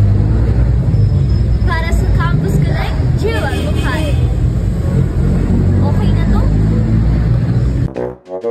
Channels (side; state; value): both; identical; correlation 1.00